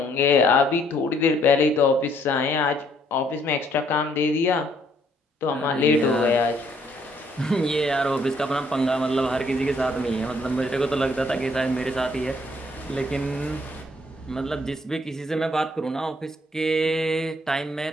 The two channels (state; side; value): normal; both; correlation 0.66